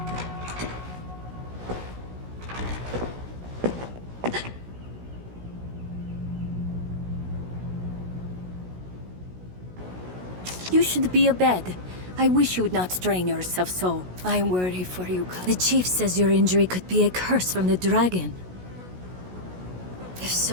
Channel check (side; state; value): left; late; 16 ms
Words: You should be abed. I wish you would not strain yourself so. I worry for you, The chief says your injury could be a curse from the dragon. If